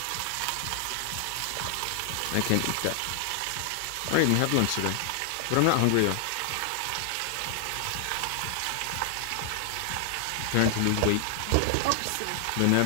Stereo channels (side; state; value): both; different; correlation 0.00